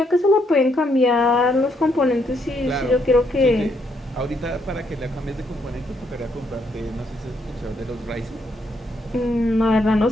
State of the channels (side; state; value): both; normal; correlation 0.74